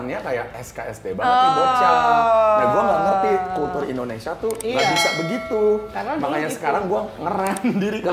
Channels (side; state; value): both; identical; correlation 1.00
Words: kayak SKSD banget nih bocah. Nah gue nggak ngerti kultur Indonesia tuh nggak Iya. bisa begitu. Karena dulu Makanya gitu. sekarang gue ngerem diri